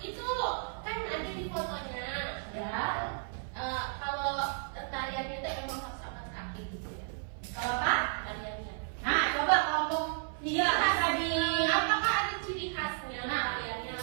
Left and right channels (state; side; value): silent; left; 55 dB below the other